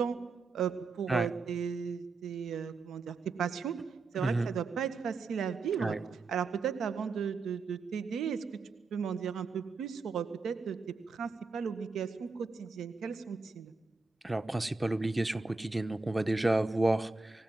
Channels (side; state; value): left; quieter; 4.1 dB